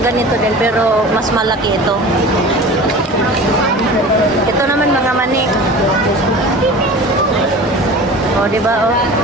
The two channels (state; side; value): normal; both; correlation 0.37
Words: din pero mas malaki ito. Ito naman mga mani. Di ba